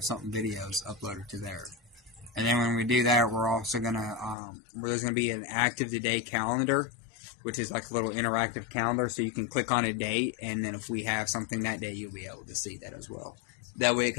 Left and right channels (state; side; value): drops out; right; at 4.4 s